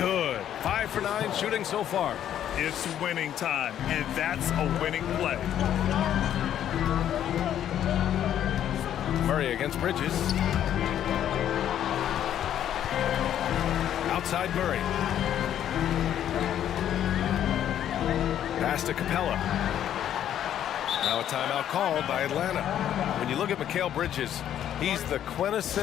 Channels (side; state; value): right; quieter; 10.6 dB